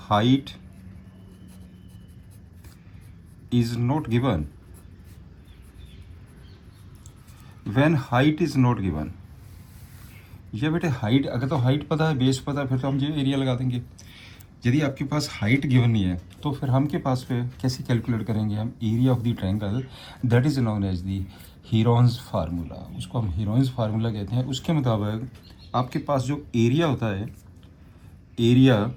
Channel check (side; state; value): both; identical; correlation 1.00